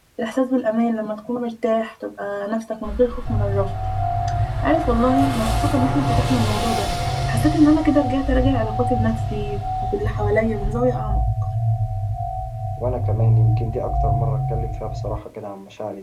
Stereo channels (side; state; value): both; identical; correlation 1.00